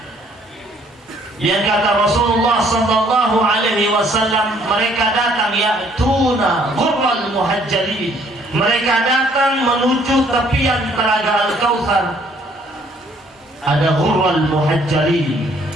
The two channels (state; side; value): normal; both; correlation 0.63